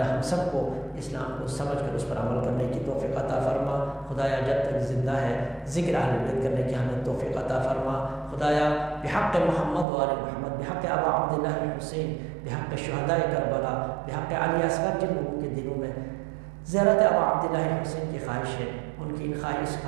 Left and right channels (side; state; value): left; drops out; at 9.9 s